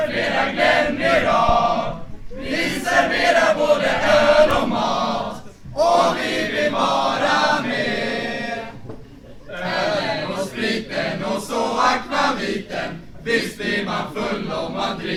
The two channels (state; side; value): identical; both; correlation 1.00